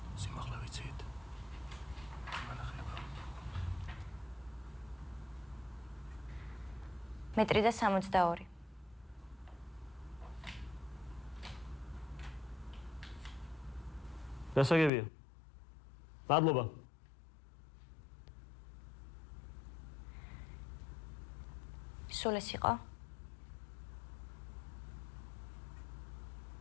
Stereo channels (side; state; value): right; drops out; at 14.9 s